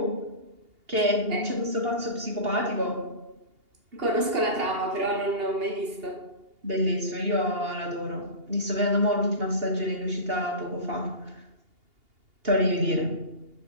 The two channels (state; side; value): late; left; 2.8 ms